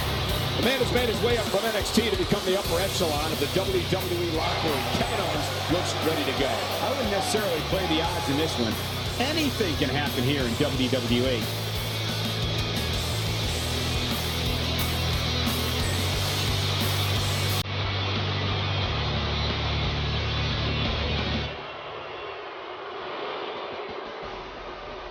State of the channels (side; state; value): both; identical; correlation 1.00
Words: The man has made his way up from NXT to become the upper echelon of the WWE locker room. Kevin Owens looks ready to go. I wouldn't necessarily play the odds in this one. Anything can happen here in WWE.